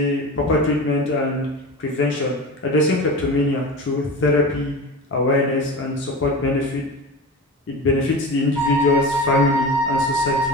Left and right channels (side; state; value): both; normal; correlation 0.30